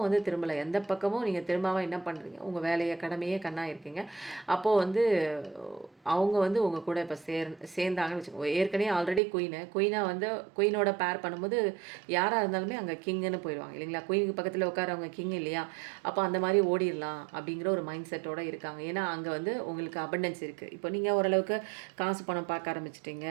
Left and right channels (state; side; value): drops out; left; at 9.2 s